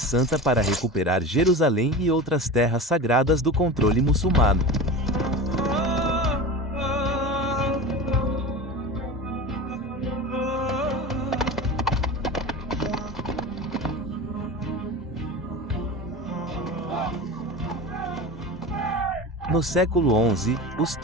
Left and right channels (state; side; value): normal; both; correlation 0.30